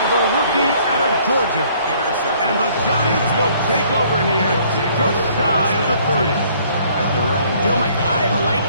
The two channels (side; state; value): both; inverted; correlation -0.60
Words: the rookie out of Georgia. And the Giants will take over here just shy of the 30. You know, Mike, I like